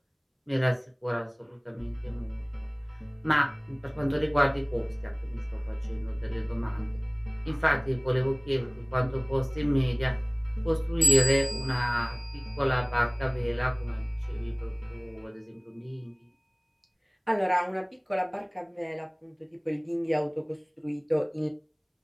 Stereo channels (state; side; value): identical; both; correlation 1.00